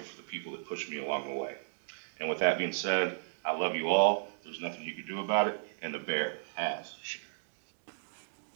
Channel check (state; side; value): silent; left; digital silence